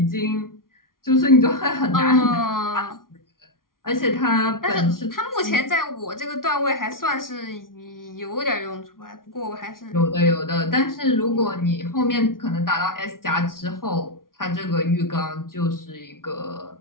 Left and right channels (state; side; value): late; right; 0.91 ms